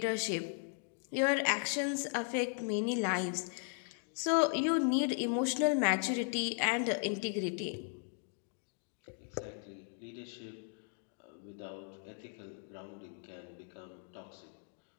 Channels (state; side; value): silent; right; 53 dB below the other